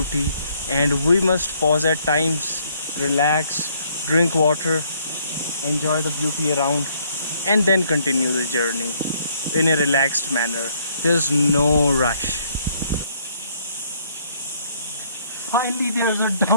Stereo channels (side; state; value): both; inverted; correlation -0.66